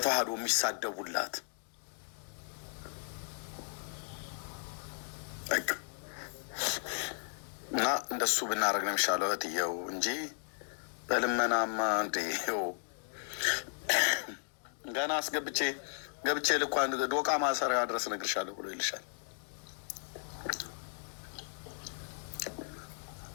የሚሳደቡላት በቃ እና እንደሱ ብናደርግ ነው የሚሻለው እህትየው እንጂ በልመናማ እንዴው ገና ገብቼ ልኳን ዶቃ ማሰሪያ ድረስ እነግርሻለሁ ብሎ ይልሻል።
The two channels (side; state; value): right; silent; digital silence